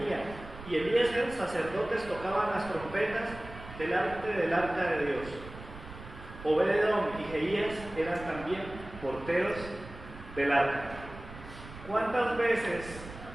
y Eliezer, sacerdotes, tocaban las trompetas delante del arca de Dios. Obededón y Jeías eran también porteros del arca. ¿Cuántas veces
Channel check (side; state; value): right; noise; rumble, 14 dB below the sound